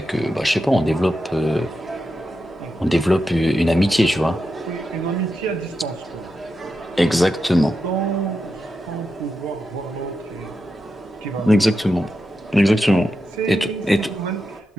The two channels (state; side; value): normal; both; correlation 0.88